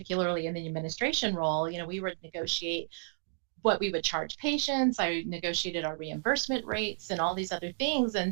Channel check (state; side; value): silent; left; digital silence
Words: in the administration role. We would negotiate what we would charge patients. I negotiated our reimbursement rates and all these other things.